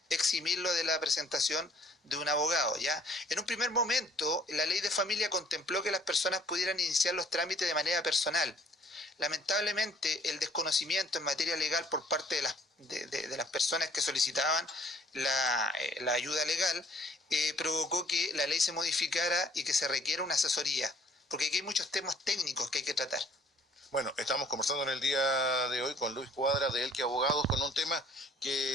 eximirlo de la presentación de un abogado, ¿ya? En un primer momento, la ley de familia contempló que las personas pudieran iniciar los trámites de manera personal. Lamentablemente, el desconocimiento en materia legal por parte de las personas que solicitaban la ayuda legal provocó que la ley se modificara y que se requiera una asesoría, porque aquí hay muchos temas técnicos que hay que tratar. Bueno, estamos conversando en el día de hoy con Luis Cuadra de Elqui Abogados con un tema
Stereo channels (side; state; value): both; normal; correlation 0.58